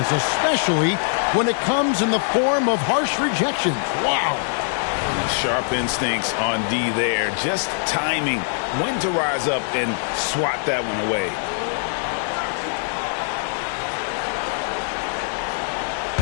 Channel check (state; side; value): silent; right; digital silence